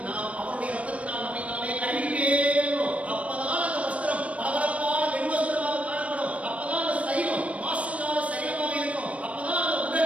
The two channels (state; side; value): late; left; 0.064 ms